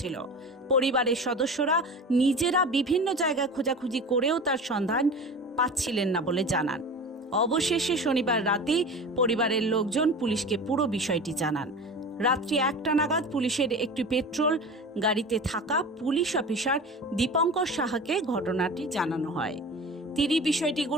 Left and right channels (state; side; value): normal; both; correlation 0.34